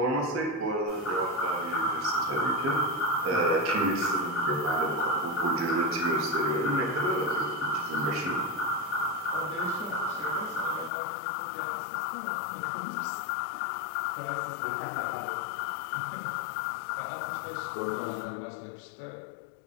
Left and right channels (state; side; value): drops out; right; at 10.9 s